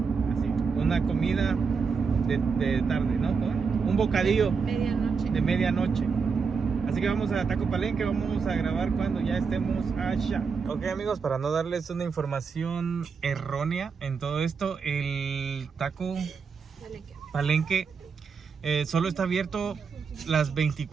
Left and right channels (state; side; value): quieter; left; 5.5 dB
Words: Así, una comida de tarde, ¿no? Un bocadillo Medianoche. de medianoche. Así que vamos a Taco Palenque, vamos a grabar cuando ya estemos allá. Ok, amigos, para no darles una información errónea en todo esto, el Taco Palenque solo está abierto las